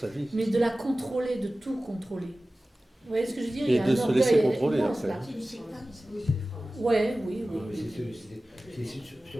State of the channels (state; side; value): normal; both; correlation 0.96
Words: vie. mais de la contrôler, de tout contrôler. Vous voyez ce que je veux dire? Et Il y a de un se orgueil laisser contrôler, immense, après. là. Oui, Ouais, oui, oui. c'est